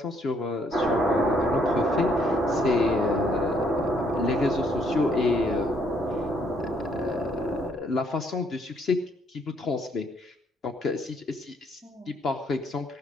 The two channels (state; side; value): normal; both; correlation 0.69